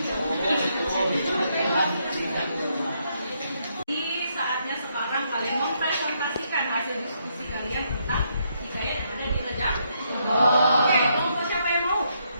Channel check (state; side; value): inverted; both; correlation -0.76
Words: Saatnya sekarang kalian mempresentasikan hasil diskusi kalian tentang hikayat yang ada di Rejang. Oke, kelompok siapa yang mau?